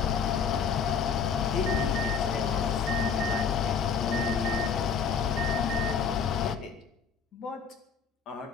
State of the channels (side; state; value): right; quieter; 6.3 dB